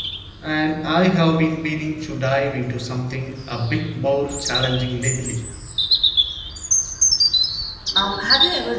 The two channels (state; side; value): identical; both; correlation 1.00